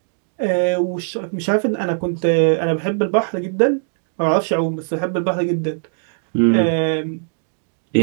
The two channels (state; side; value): silent; left; digital silence